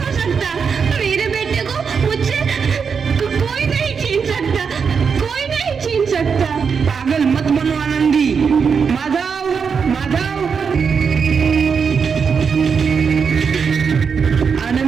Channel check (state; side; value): quieter; left; 6.1 dB